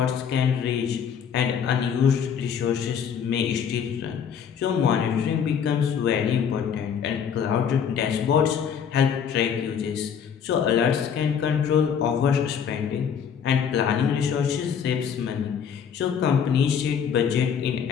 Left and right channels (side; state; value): right; quieter; 7.6 dB